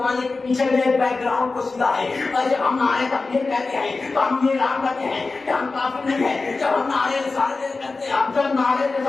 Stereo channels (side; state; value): right; quieter; 3.8 dB